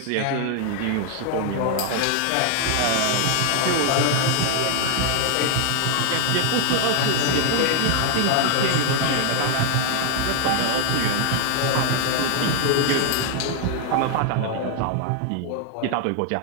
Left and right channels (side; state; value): both; different; correlation 0.00